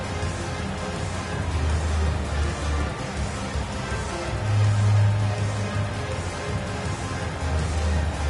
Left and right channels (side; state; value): both; identical; correlation 1.00